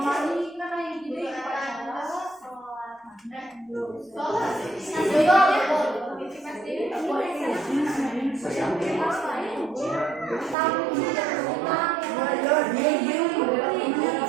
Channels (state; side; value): drops out; left; at 10.6 s